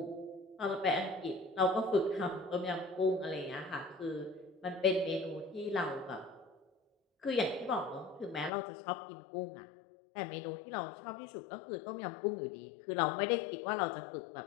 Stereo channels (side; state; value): right; drops out; at 8.5 s